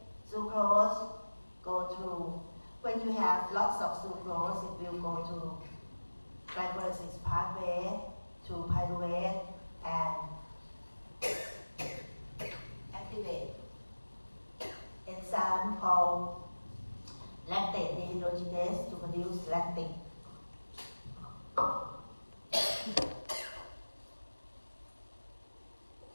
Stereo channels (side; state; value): both; inverted; correlation -1.00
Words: sucrose go through, when you have lots of sucrose, it will go to glycolysis pathway, to pyruvate, and activate enzyme called lactate dehydrogenase to produce lactic.